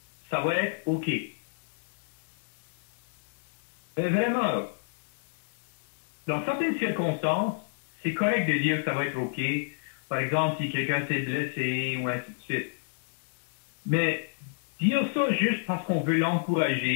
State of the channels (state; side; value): silent; right; digital silence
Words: ça va être OK. » Mais vraiment, dans certaines circonstances, c'est correct de dire que ça va être OK. Par exemple, si quelqu'un s'est blessé ou ainsi de suite. Mais dire ça juste parce qu'on veut